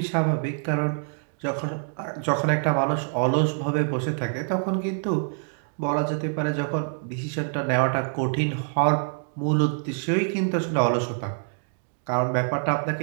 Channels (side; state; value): left; silent; digital silence